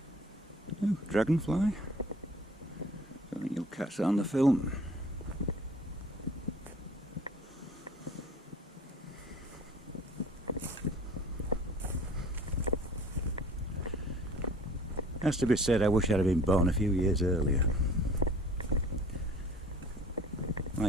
Oh, dragonfly. I think you'll catch that on the film. Has to be said, I wish I'd have been born a few years earlier.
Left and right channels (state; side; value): normal; both; correlation 0.49